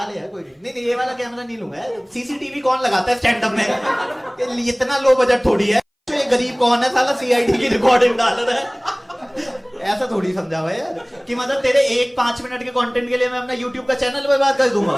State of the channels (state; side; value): identical; both; correlation 1.00